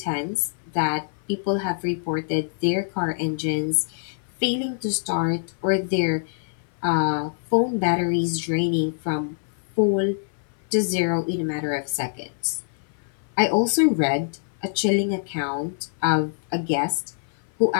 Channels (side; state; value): right; silent; 56 dB below the other